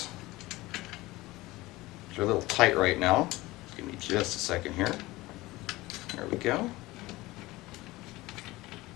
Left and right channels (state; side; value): quieter; right; 19.6 dB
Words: They're a little tight right now. Give me just a second here. There we go.